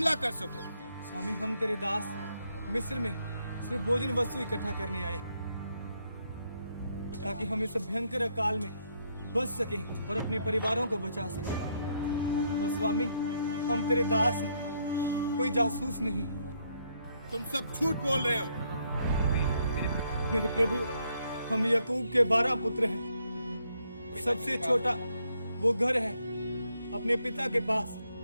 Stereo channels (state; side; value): inverted; both; correlation -0.74